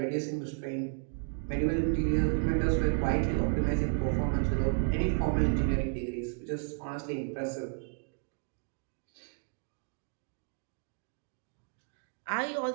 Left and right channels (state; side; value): silent; left; 56 dB below the other